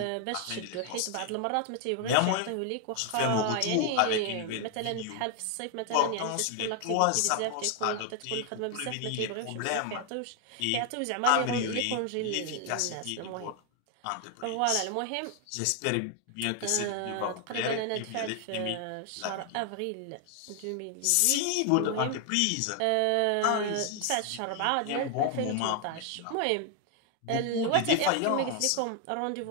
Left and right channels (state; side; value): different; both; correlation 0.00